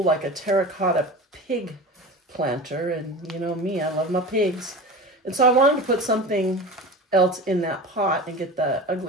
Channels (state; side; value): normal; both; correlation 0.32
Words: like a terracotta pig planter. And you know me, I love my pigs. And so I wanted to put something else in that pot and get the